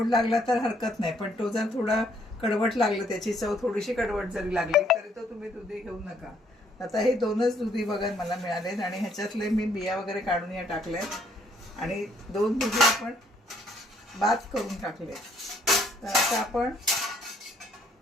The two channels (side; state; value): both; normal; correlation 0.67